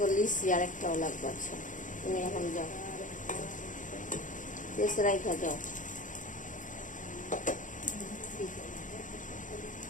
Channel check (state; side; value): late; right; 0.37 ms